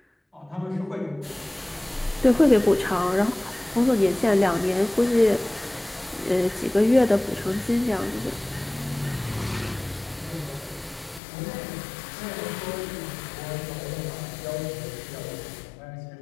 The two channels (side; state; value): right; drops out; at 11.2 s